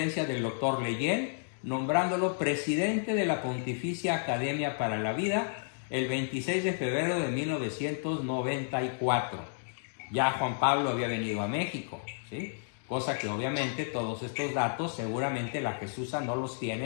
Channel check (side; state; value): right; silent; digital silence